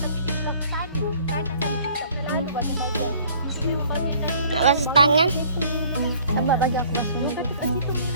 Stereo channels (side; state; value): both; inverted; correlation -0.54